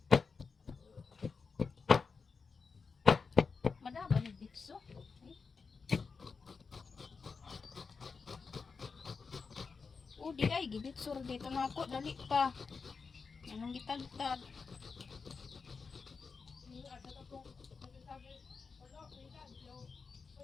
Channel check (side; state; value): right; quieter; 5.0 dB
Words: madaba ni bitso. Di ay gibitsur dito na ako dali pa. Anong gitagtag?